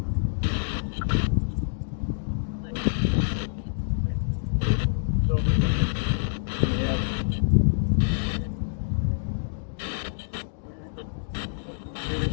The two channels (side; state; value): right; silent; digital silence